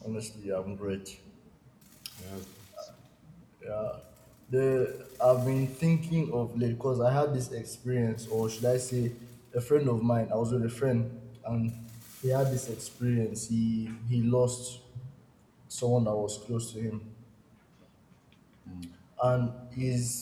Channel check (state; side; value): identical; both; correlation 1.00